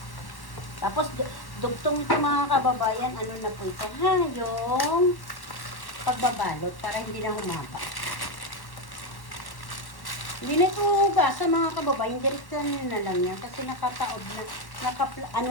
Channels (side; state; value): right; late; 1.1 ms